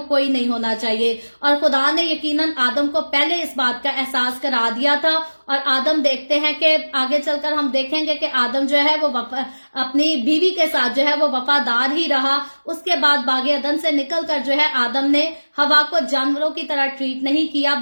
कोई नहीं होना चाहिए। और खुदा ने यकीनन आदम को पहले इस बात का एहसास करा दिया था और आदम देखते हैं कि आगे चलकर हम देखेंगे कि आदम जो है वो अपनी बीवी के साथ जो है वो वफादार ही रहा। उसके बाद बागे अदन से निकलकर जो है आदम ने हवा को जानवरों की तरह ट्रीट नहीं किया,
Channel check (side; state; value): both; inverted; correlation -1.00